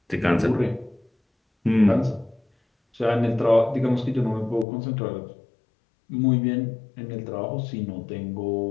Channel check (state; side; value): drops out; right; at 4.7 s